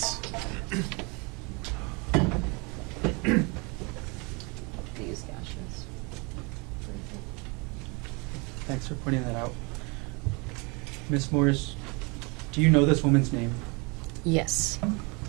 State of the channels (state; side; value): quieter; left; 29.8 dB